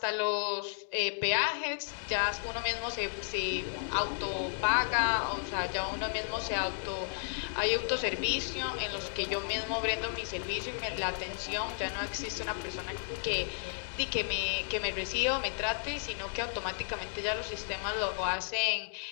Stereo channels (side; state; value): right; silent; digital silence